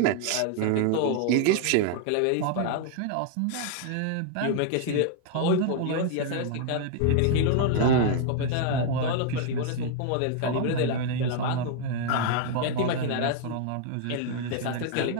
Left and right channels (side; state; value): both; different; correlation 0.00